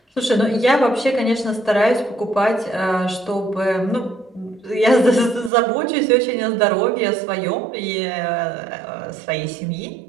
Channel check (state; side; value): drops out; left; at 5.5 s